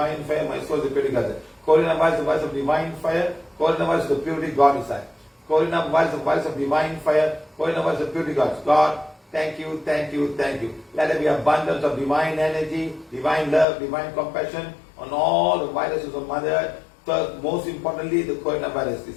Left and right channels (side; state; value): right; drops out; at 13.7 s